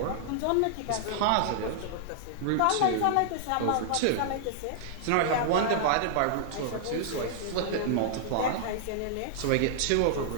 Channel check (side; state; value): both; different; correlation -0.01